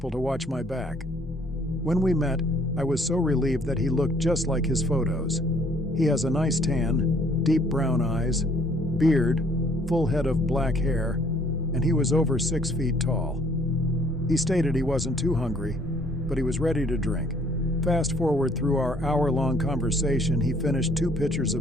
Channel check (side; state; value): both; normal; correlation 0.61